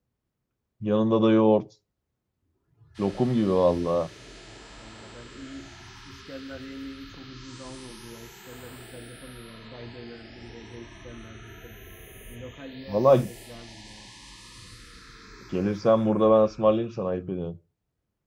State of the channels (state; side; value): identical; both; correlation 1.00